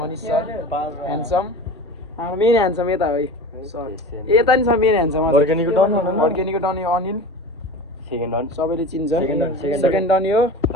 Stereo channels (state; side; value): normal; both; correlation 0.34